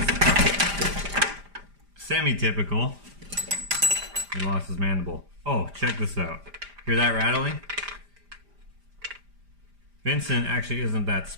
semi-typical. He lost his mandible. Oh, check this out. Hear that rattling? Vincent actually isn't that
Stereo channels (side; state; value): left; late; 5.0 ms